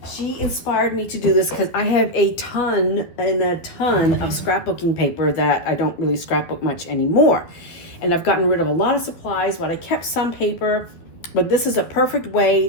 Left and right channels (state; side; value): late; right; 12 ms